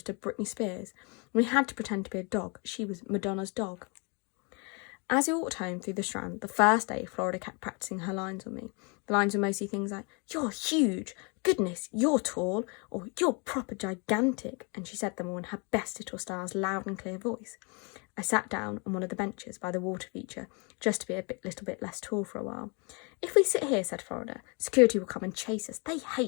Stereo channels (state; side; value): quieter; right; 32.9 dB